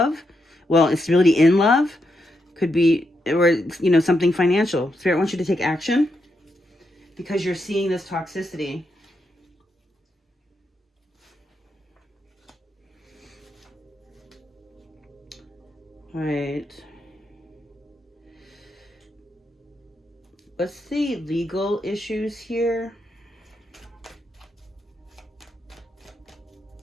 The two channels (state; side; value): normal; both; correlation 0.82